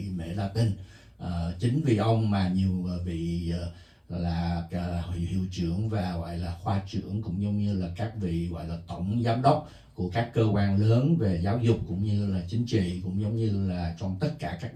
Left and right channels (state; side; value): identical; both; correlation 1.00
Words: Mễ Latin. Chính vì ông mà nhiều vị là hiệu trưởng và gọi là khoa trưởng, cũng giống như là các vị gọi là tổng giám đốc của các cơ quan lớn về giáo dục cũng như là chính trị, cũng giống như là trong tất cả các